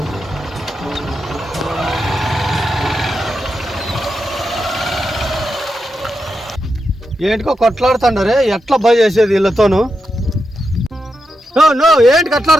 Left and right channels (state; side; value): normal; both; correlation 0.87